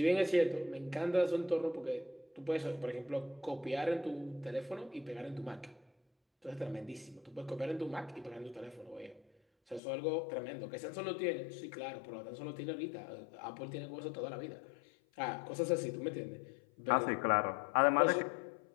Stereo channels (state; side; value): drops out; right; at 9.8 s